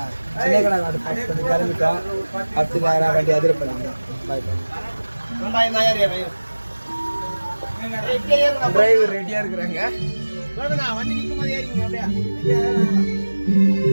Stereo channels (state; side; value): inverted; both; correlation -1.00